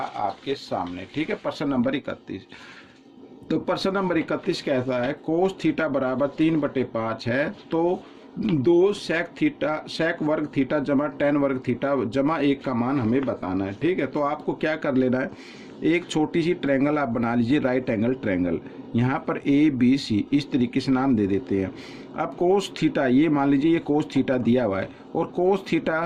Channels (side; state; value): both; identical; correlation 1.00